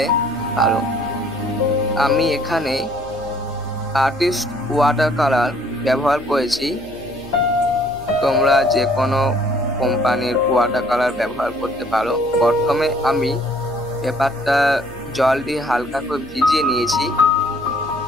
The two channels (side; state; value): left; noise; hum, 20 dB below the sound